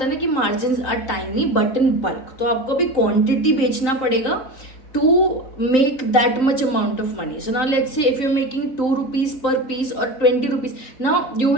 है ना कि margins are tiny but in bulk, तो आपको भी quantity बेचना पड़ेगा to make that much amount of money. So now let's say if you're making 2 rupees per piece or 20 rupees, now you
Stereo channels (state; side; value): late; right; 3.8 ms